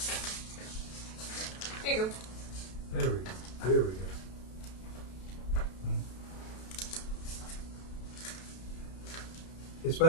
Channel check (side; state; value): right; late; 32 ms